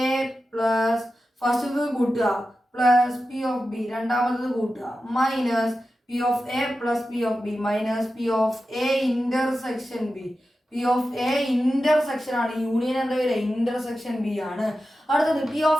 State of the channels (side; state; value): both; normal; correlation 0.92